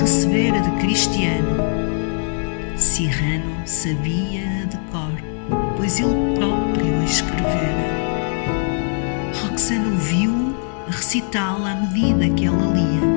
de Cristiano. Cyrano sabia-a de cor, pois ele próprio a escrevera. Roxana ouviu-o a recitá-la à medida que ela lia.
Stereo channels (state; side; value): silent; right; digital silence